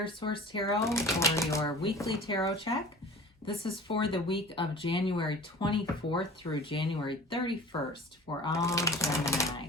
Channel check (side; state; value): both; normal; correlation 0.40